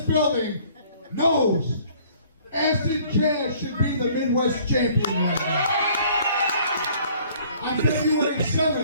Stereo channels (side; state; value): both; inverted; correlation -0.57